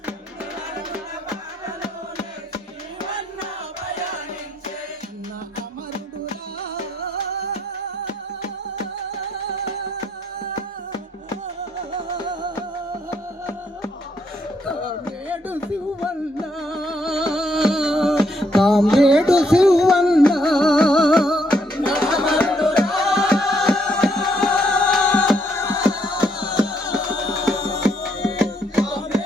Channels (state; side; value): normal; both; correlation 0.73